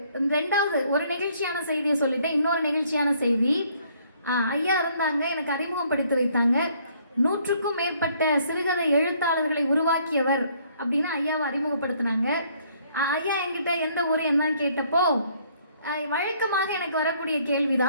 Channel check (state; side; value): inverted; both; correlation -0.64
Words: ரெண்டாவது ஒரு நெகிழ்ச்சியான செய்தியை சொல்லிட்டேன். இன்னொரு நெகிழ்ச்சியான செய்தி, ஐயா இருந்தாங்க, எனக்கு அறிமுகப்படுத்தி வைத்தாங்க. 100க்கும் மேற்பட்ட சிறுகதை எழுத்தாளர்களை உருவாக்கியவர் அப்படின்னு ஐயாவை அறிமுகப்படுத்தினாங்க. ஐயா என்கிட்ட எந்த ஊர் என்னன்னு கேட்டப்போ வழக்கமாக எனக்கு வரக்கூடிய